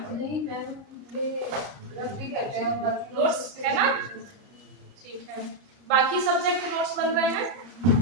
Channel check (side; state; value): left; late; 30 ms